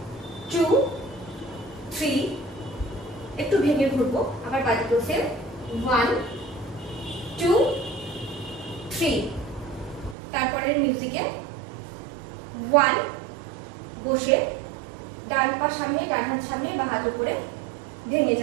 2 3, একটু ভেঙে ঘুরবো, আবার বাদিকেও সেম 1 2 3। তারপরে মিউজিকে 1 বসে ডান পা সামনে, ডান হাত সামনে, বা হাত উপরে ভেঙে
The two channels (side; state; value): left; drops out; at 10.2 s